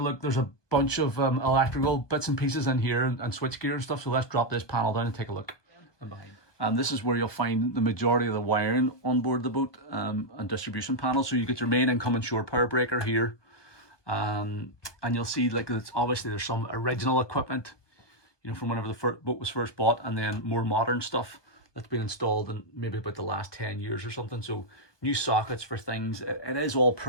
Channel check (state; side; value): late; right; 1.2 ms